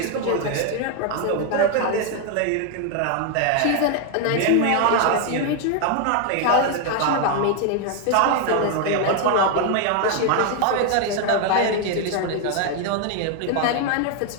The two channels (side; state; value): both; different; correlation 0.01